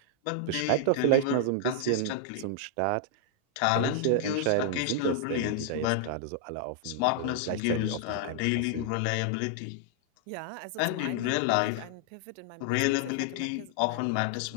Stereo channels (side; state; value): both; different; correlation -0.01